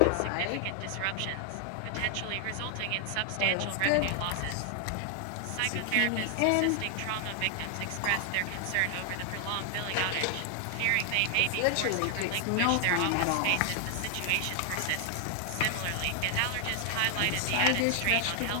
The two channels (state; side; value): different; both; correlation 0.00